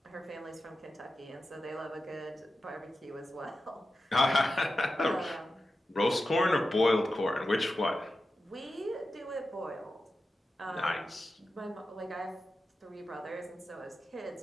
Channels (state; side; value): normal; both; correlation 0.92